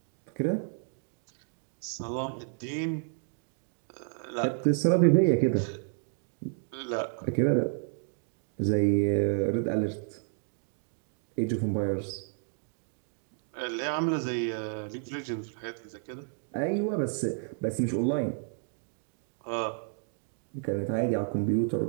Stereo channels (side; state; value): left; silent; 57 dB below the other